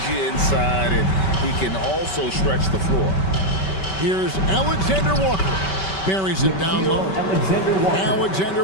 you inside, and he can also stretch the floor. Here's Alexander Walker. Buries it down low. Alexander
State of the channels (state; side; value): late; right; 5.2 ms